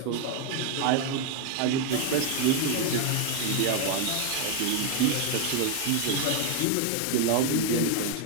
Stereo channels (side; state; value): both; different; correlation 0.01